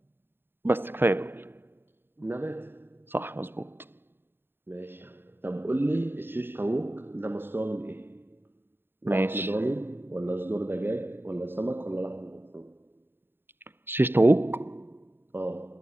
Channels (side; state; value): left; late; 0.10 ms